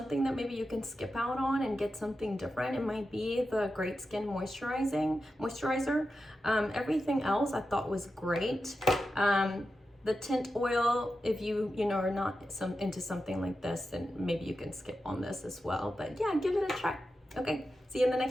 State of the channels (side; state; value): both; normal; correlation 0.90